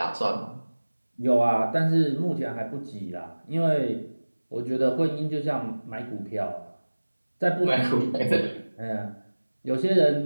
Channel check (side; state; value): both; inverted; correlation -1.00